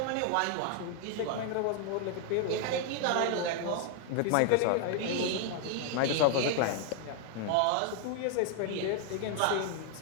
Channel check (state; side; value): different; both; correlation 0.00